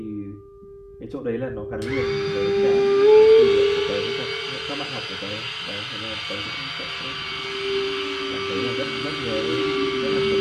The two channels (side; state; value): both; identical; correlation 1.00